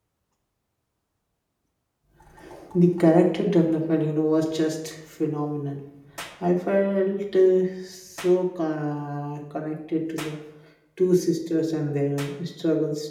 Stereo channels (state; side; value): identical; both; correlation 1.00